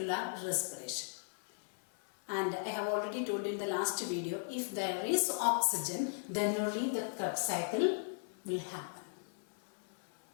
respiration. And I have already told in the last video, if there is oxygen, then only the Krebs cycle will happen.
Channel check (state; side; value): silent; right; 53 dB below the other